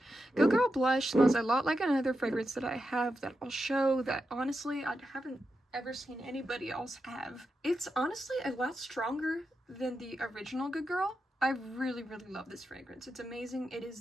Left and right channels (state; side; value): normal; both; correlation 0.88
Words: Good Girl Blush smells a lot like another fragrance that I have that I'll show that honestly I haven't ever seen anybody else have. It's honestly a lot stronger than the original Good Girl. I really, really love this fragrance. It's amazing. It